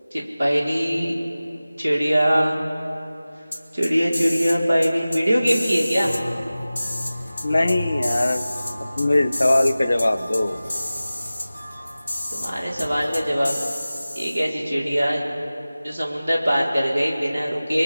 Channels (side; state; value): both; inverted; correlation -0.97